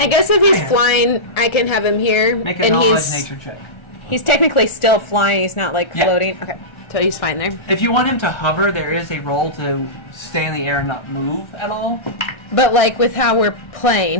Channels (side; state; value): right; late; 1.4 ms